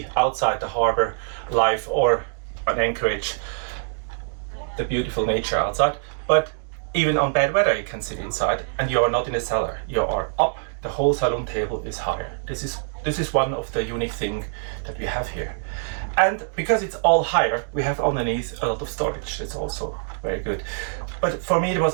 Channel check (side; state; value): left; silent; digital silence